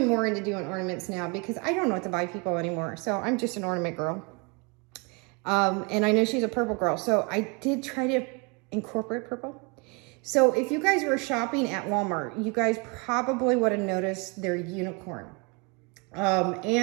more into doing ornaments now because I don't know what to buy people anymore. So I'm just an ornament girl. And I know she's a purple girl, so I did try to incorporate purple. So if you guys were shopping at Walmart, you guys probably would have noticed their unicorn,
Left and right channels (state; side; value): quieter; left; 30.7 dB